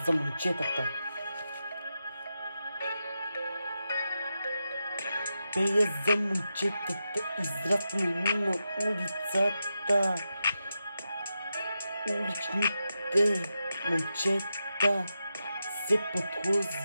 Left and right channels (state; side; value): inverted; both; correlation -0.88